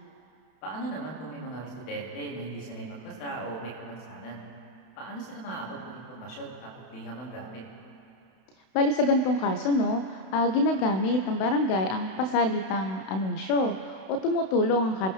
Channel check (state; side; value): late; right; 32 ms